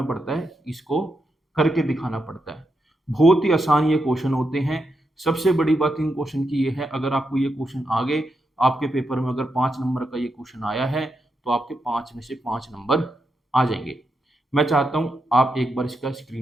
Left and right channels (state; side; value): normal; both; correlation 0.84